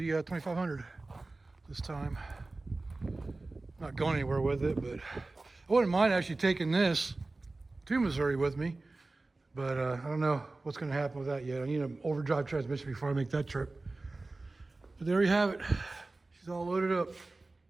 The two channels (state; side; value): quieter; left; 3.2 dB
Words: this time. Not going anywhere with it, but I wouldn't mind actually taking this to Missouri with me. But I don't know what's going to happen with that yet. I need an overdrive transmission before I make that trip. But there you have it. She's all loaded up.